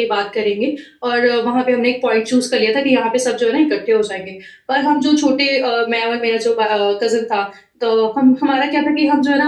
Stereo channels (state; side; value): identical; both; correlation 1.00